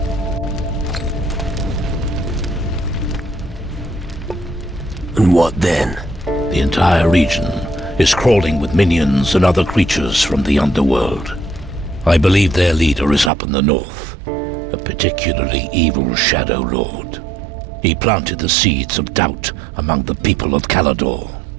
And what then? The entire region is crawling with minions and other creatures from the Underworld. I believe their leader is up in the north, a particularly evil Shadow Lord. He planted the seeds of doubt among the people of Calador.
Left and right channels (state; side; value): drops out; left; at 13.3 s